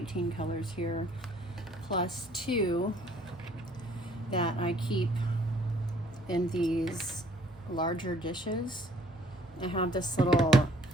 colors here, plus 2 that I keep in these larger dishes. I have this little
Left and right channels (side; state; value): both; normal; correlation 0.59